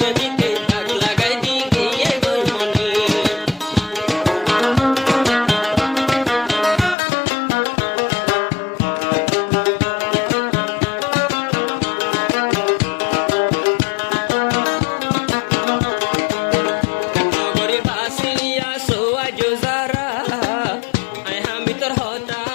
ডাক লাগাই দি গিয়ে গই মনে নগরে বাসিয়া সোয়াজ যারা আই হামি তোর হতা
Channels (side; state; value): right; drops out; at 7.0 s